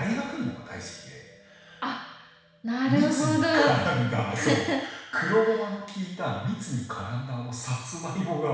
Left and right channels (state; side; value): identical; both; correlation 1.00